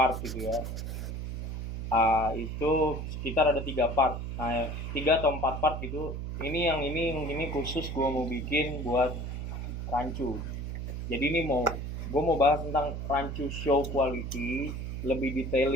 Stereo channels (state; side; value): noise; right; hum, 5 dB below the sound